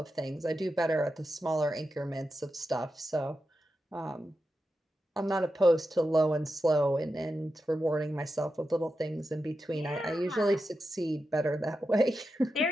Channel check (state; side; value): normal; both; correlation 0.89